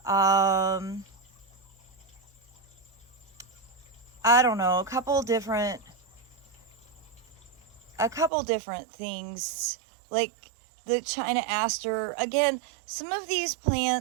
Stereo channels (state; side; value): drops out; left; at 8.3 s